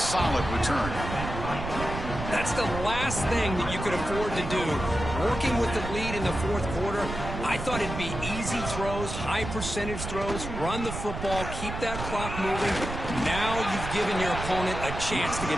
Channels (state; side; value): noise; right; rumble, 6 dB below the sound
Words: return. That's the last thing that you could afford to do. Working with the lead in the fourth quarter, I thought it'd be easy throws, high percentage throws, run the football, keep that clock moving. Now you've given your opponent a chance to